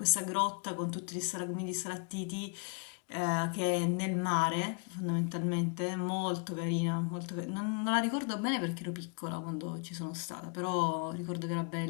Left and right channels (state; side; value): quieter; right; 37.8 dB